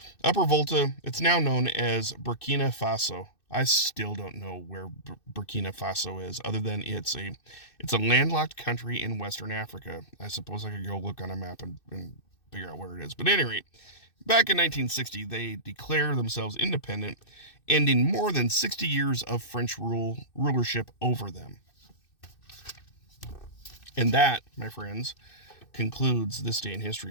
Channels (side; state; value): right; late; 2.6 ms